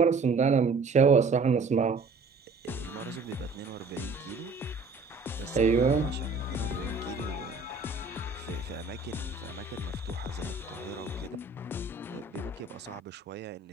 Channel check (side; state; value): left; quieter; 4.0 dB